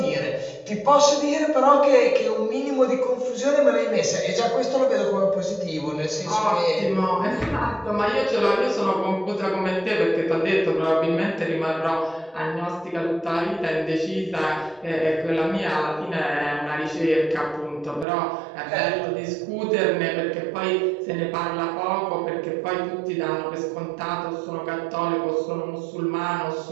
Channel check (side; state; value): left; drops out; at 18.1 s